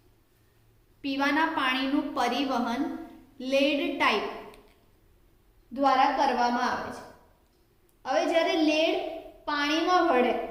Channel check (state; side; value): identical; both; correlation 1.00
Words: પીવાના પાણીનું પરિવહન લેડ ટાઇપ દ્વારા કરવામાં આવે છે. હવે જ્યારે લેડ પાણીમાં ભળે,